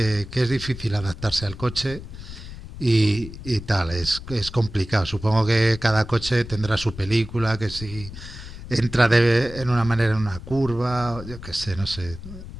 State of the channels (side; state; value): left; noise; rumble, 13 dB below the sound